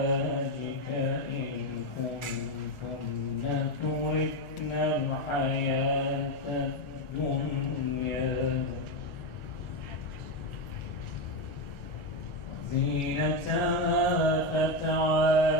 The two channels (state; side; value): late; right; 1.4 ms